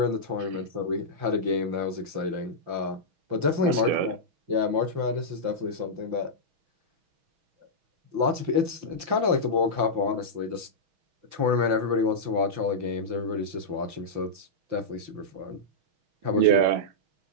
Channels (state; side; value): late; left; 5.8 ms